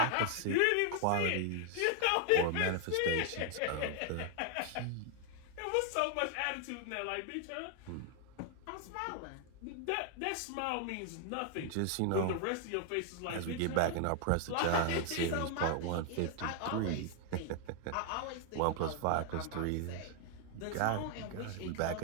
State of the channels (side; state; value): both; different; correlation 0.00